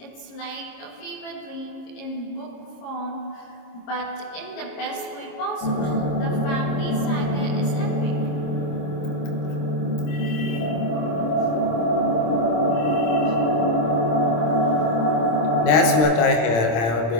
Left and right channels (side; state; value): right; late; 26 ms